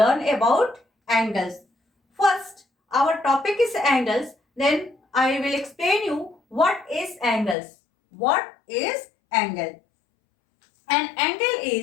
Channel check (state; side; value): drops out; right; at 7.6 s